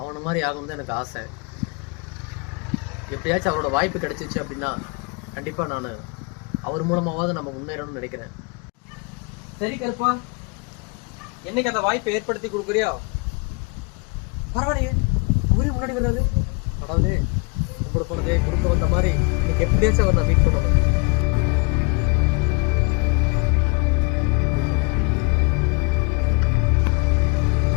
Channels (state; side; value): quieter; right; 31.5 dB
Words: மாதிரி ஆகணும் தான் எனக்கு ஆசை. எப்படியாச்சும் அவரோட வாய்ப்பு கிடைச்சிச்சு அப்படின்னா கண்டிப்பாக நான் அவர் மூலமாவது நம்ம முன்னேறணும்னு நினைக்கிறேன். சரி கருப்பா, என்னைக்கு அந்த வாய்ப்பை ஏற்படுத்தி கொடுக்குறியா? பரவாயில்லையே, அவரே முன்னாடி வர்றாரு. கடவுளே, உங்களுக்கு போனதே குறுக்க வந்த மாதிரி இன்னைக்கு எப்படியாச்சும் அவர் நான் மீட் பண்ணணும்.